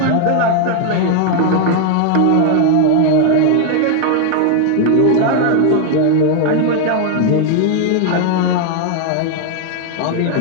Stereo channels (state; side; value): different; both; correlation 0.00